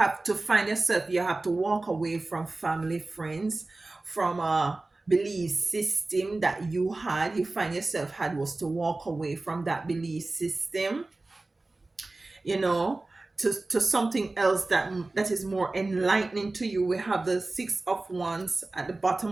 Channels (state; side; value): quieter; left; 3.1 dB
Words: to find yourself, you have to walk away from family, friends, from a belief system that you had. You find yourself had was to walk away from that belief system, you know, to something else that is more enlightening to you. We have the Six of Wands at the bottom